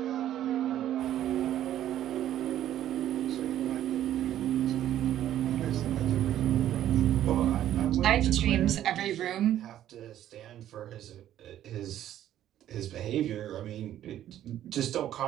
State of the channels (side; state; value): left; quieter; 11.9 dB